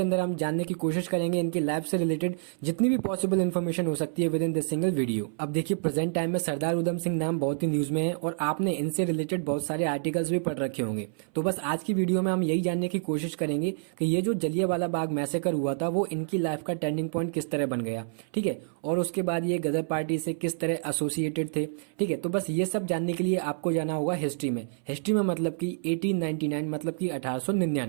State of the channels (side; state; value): left; silent; 59 dB below the other